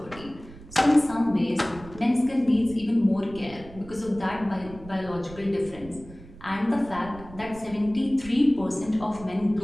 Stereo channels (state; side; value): noise; right; rumble, 18 dB below the sound